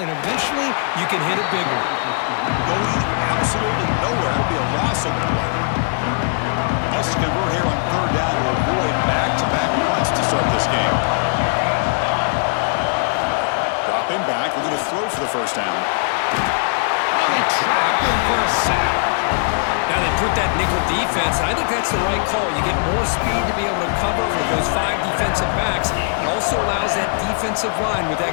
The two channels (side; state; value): right; silent; digital silence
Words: eventually you can hit a big one. Going absolutely nowhere. That'll be a loss of play. Must convert here on third down to avoid back-to-back punts to start this game. Dropping back. We're going to throw for the first down. They trap him for a sack. Now they put that nickel defense, and I think that's the right call. You get more speed to be able to cover for those 5 defensive backs. It also allows that defensive line with that